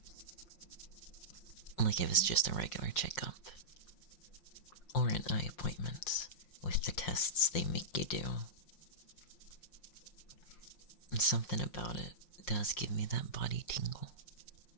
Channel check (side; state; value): right; late; 5.7 ms